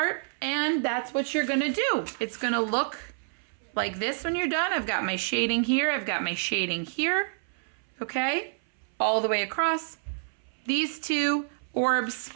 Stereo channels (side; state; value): left; silent; 59 dB below the other